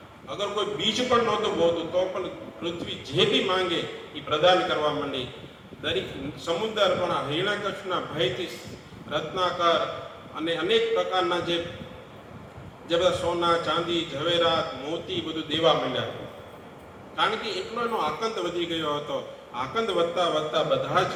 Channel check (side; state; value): both; identical; correlation 1.00